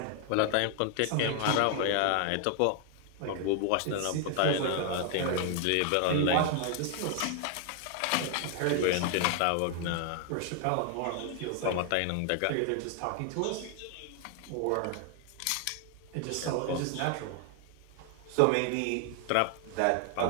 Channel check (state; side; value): different; both; correlation 0.00